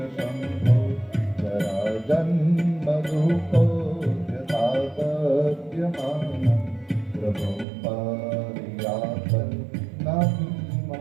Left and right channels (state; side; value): drops out; left; at 7.7 s